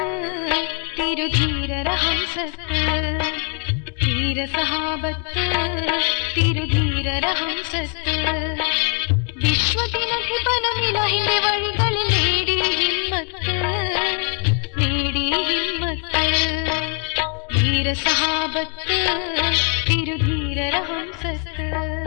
തിരുധീരരഹംസത്ത് ധീരസഹാബത്ത് തിരുധീരരഹംസത്ത് വിശ്വദിനധിപനമിലാഹിന്റെ വഴികളിൽ നേടി ഹിമ്മത്ത് ധീരസഹാബത്ത് തിരുധീരരഹംസത്ത്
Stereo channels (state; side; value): quieter; right; 37.7 dB